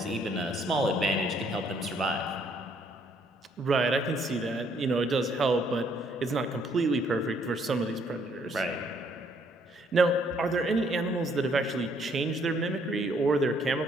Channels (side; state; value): both; normal; correlation 0.67